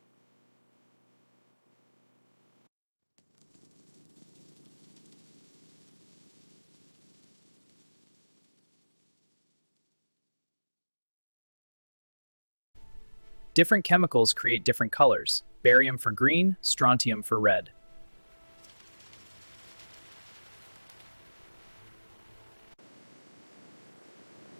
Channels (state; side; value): inverted; both; correlation -1.00